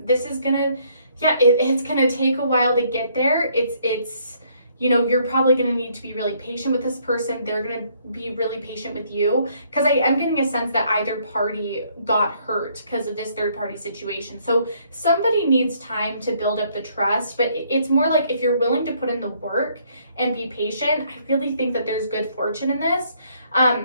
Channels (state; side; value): inverted; both; correlation -0.67